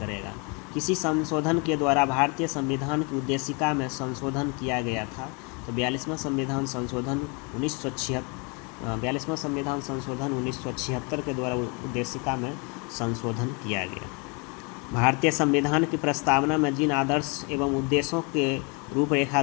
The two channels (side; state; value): right; quieter; 32.2 dB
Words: किसी संशोधन के द्वारा भारतीय संविधान की उद्देशिका में संशोधन किया गया था, तो 42वां संविधान संशोधन 1976 के द्वारा उद्देशिका में संशोधन किया गया। भारतीय संविधान की प्रस्तावना में जिन आदर्श एवं उद्देश्यों के रूपरेखा